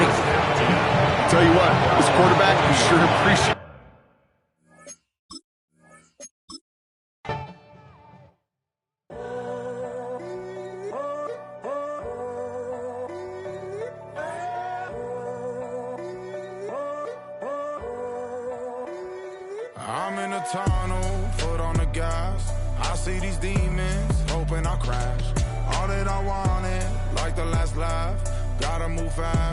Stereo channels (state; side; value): identical; both; correlation 1.00